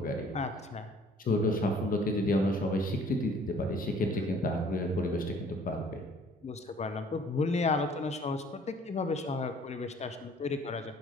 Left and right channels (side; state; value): both; normal; correlation 0.55